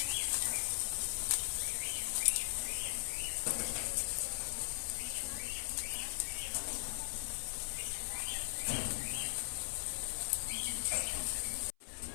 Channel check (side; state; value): right; silent; 52 dB below the other